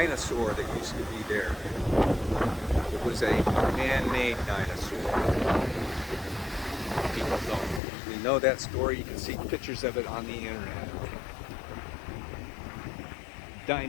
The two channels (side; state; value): right; drops out; at 7.8 s